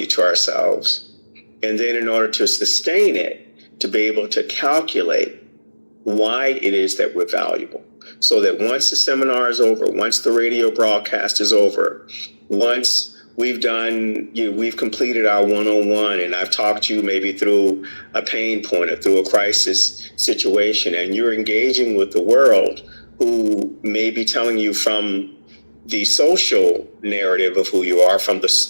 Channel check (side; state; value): both; inverted; correlation -1.00